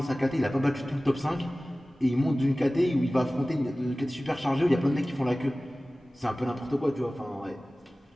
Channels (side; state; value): both; normal; correlation 0.97